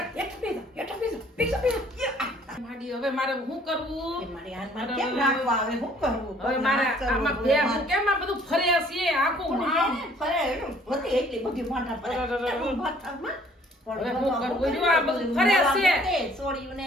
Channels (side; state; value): both; normal; correlation 0.58